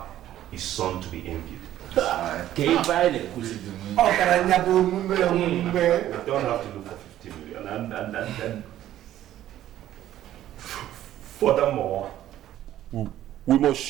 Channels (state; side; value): quieter; left; 12.7 dB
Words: a son to be envied. You don't have to look for 50 million. And Furthermore, we